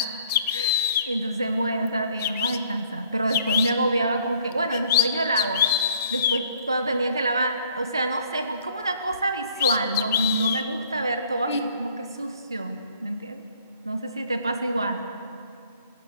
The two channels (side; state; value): both; inverted; correlation -0.58